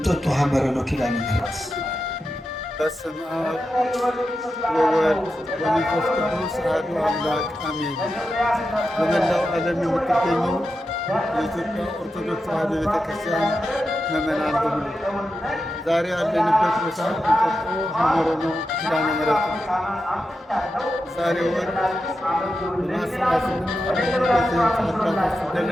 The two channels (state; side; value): normal; both; correlation 0.89